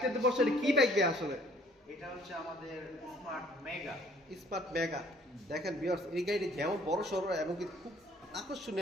বসে কি বাইক দিয়ে আসলে? এটা হচ্ছে আমাদের স্মার্ট মেগা। Smart mega. দেখেন ভিউয়ার্স, এই গাড়িটি যেমন বড় সড়ো এবং কি খুব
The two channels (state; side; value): normal; both; correlation 0.58